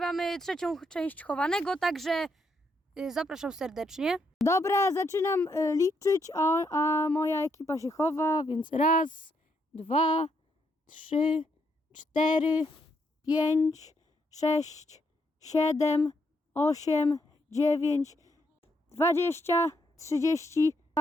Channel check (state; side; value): normal; both; correlation 0.76